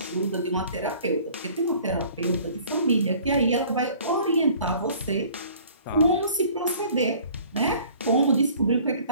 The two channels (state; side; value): inverted; both; correlation -0.52